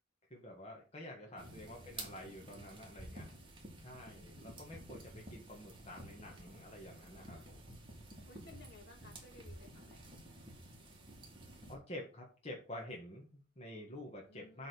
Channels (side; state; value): both; normal; correlation 0.36